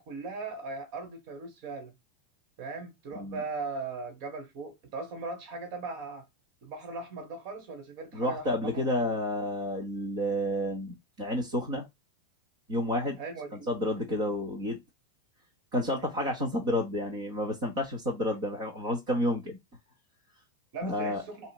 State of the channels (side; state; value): left; late; 4.1 ms